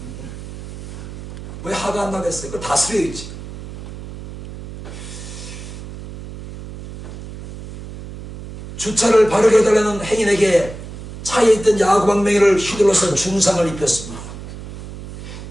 왜 화가 안 나겠어요? 그거 다스려야지. 주차를 바르게 해달라는 행인에게 차에 있던 야구방망이를 휘둘러서 중상을 입혔습니다.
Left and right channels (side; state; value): right; noise; hum, 12 dB below the sound